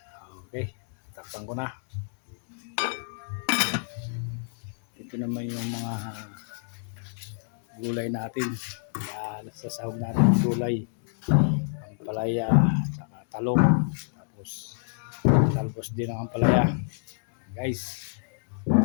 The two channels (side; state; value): right; silent; digital silence